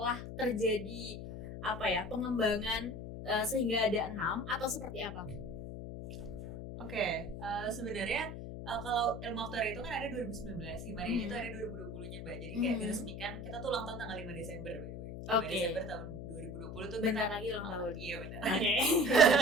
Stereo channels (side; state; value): left; noise; hum, 8 dB below the sound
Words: terjadi pengembangan sehingga ada 6 atau seperti apa? Oke, sebenarnya kalau ilmu aktuaria itu kan ada 2019, Himaria itu ada 2020-nya Mbak. Jadi kayak diresmikan, kita tuh ulang tahun tanggal 5 Desember by the way. 5 Desember tahun 2020 tuh Bentar lagi ulang tahun. Iya benar. Oke.